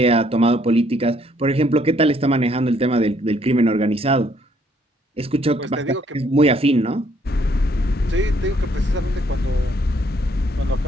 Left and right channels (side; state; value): both; normal; correlation 0.67